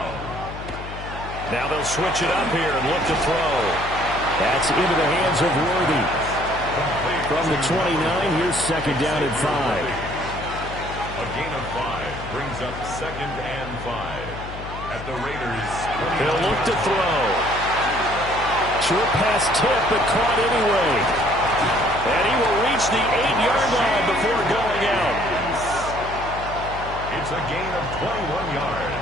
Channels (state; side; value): noise; left; hum, 11 dB below the sound